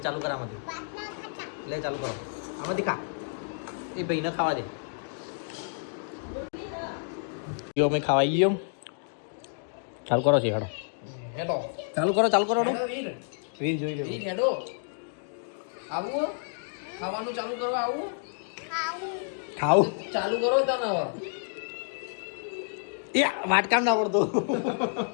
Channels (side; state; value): right; silent; digital silence